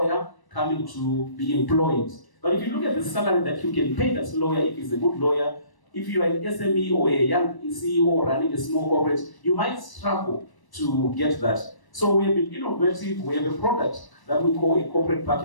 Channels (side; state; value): right; late; 1.0 ms